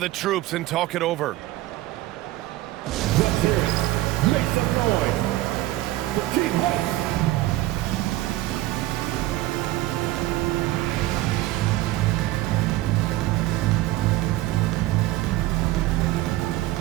troops and talk it over. Let's hear it. Make some noise for Team Hawks.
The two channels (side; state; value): left; quieter; 16.9 dB